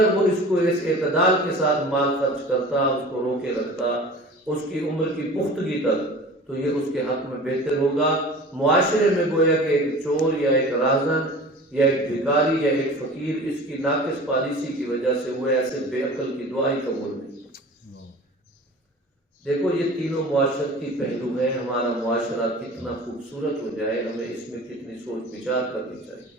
وہ اس کو اس اعتدال کے ساتھ مال خرچ کرتا، اس کو روکے رکھتا اس کی عمر کی پختگی تک، تو یہ اس کے حق میں بہتر ہوگا۔ معاشرے میں گویا کہ ایک چور یا ایک رازن یا ایک بھکاری یا ایک فقیر اس کی ناقص پالیسی کی وجہ سے وہ ایسے بے عقل کی دعائی قبول نہیں۔ دیکھو یہ تینوں معاشرتی پہلو ہیں، ہمارا معاشرہ کتنا خوبصورت ہو جائے، ہمیں اس میں کتنی سوچ بچار کرنی چاہیے۔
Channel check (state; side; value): normal; both; correlation 0.40